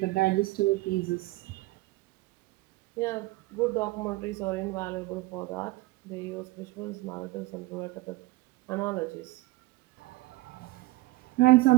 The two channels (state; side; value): quieter; left; 20.3 dB